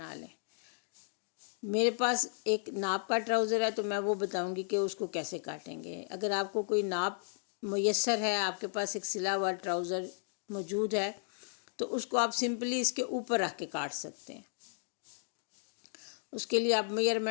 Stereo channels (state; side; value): silent; right; digital silence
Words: لیں۔ میرے پاس ایک ناپ کا ٹراؤزر ہے تو میں وہ بتاؤں گی کہ اس کو کیسے کاٹیں گے۔ اگر آپ کو کوئی ناپ میسر ہے، آپ کے پاس ایک سلا ہوا ٹراؤزر موجود ہے، تو اس کو آپ سمپلی اس کے اوپر رکھ کے کاٹ سکتے ہیں۔ اس کے لیے آپ